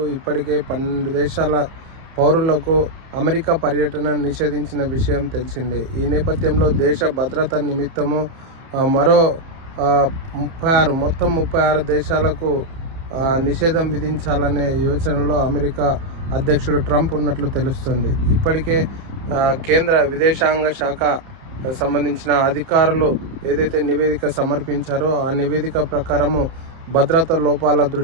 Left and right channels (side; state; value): left; late; 30 ms